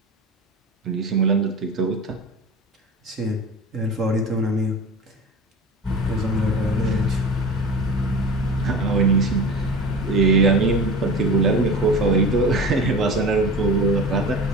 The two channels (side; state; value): both; normal; correlation 0.34